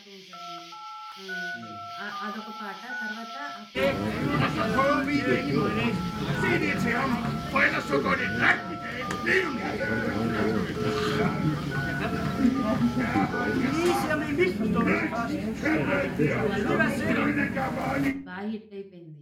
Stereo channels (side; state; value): both; identical; correlation 1.00